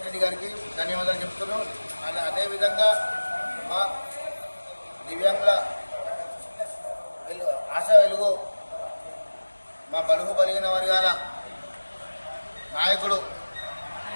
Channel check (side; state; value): both; inverted; correlation -1.00